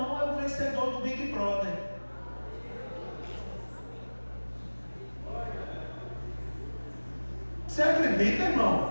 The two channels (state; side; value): inverted; both; correlation -1.00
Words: é o vencedor do Big Brother. Você acredita,